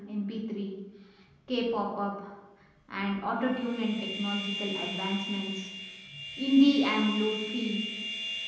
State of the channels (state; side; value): identical; both; correlation 1.00